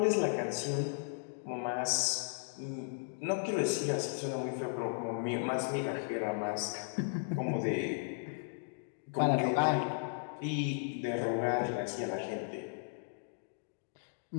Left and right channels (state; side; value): silent; right; digital silence